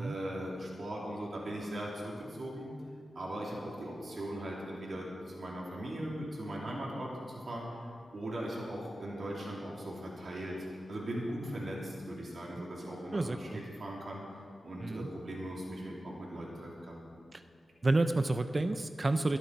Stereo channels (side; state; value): both; normal; correlation 0.94